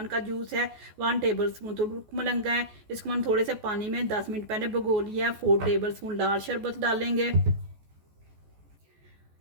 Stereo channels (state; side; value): late; left; 14 ms